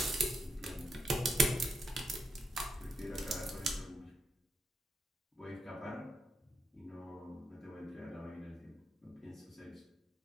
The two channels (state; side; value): normal; both; correlation 0.82